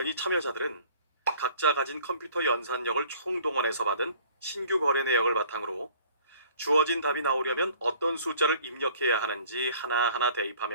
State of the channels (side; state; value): both; inverted; correlation -0.53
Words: 참여자들은 각자 가진 컴퓨터 연산력을 총동원해서 받은 신규 거래 내역을 바탕으로 주어진 답이 나오려면 어떤 숫자를 입력해야 하는지 하나하나